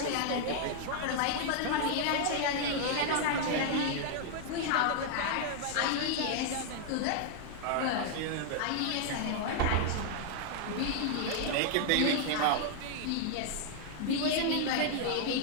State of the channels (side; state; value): both; different; correlation 0.00